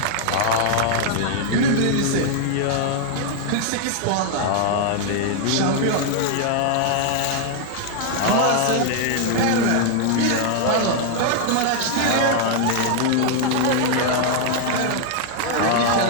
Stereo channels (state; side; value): different; both; correlation 0.00